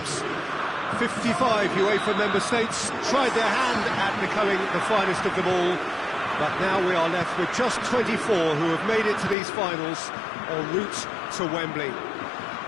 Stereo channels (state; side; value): drops out; right; at 9.3 s